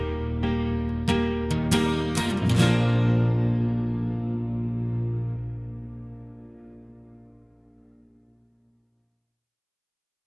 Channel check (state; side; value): identical; both; correlation 1.00